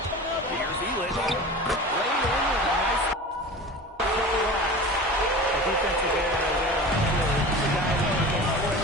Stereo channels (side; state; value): both; normal; correlation 0.35